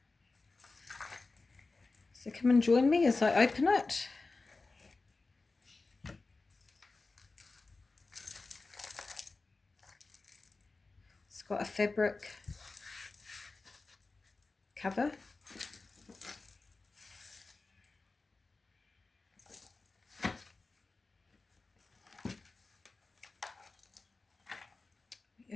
so come and join me as I open it. It's got a fabric cover.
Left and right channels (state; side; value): quieter; right; 3.7 dB